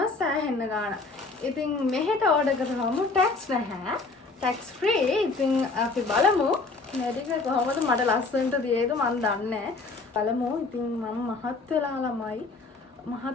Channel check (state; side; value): quieter; right; 3.8 dB